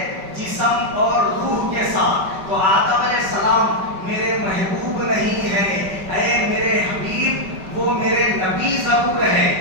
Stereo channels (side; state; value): left; late; 5.2 ms